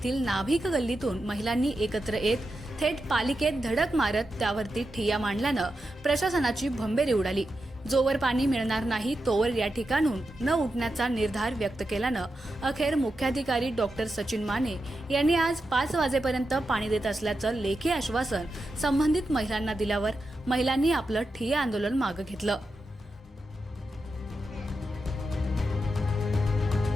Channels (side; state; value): both; normal; correlation 0.88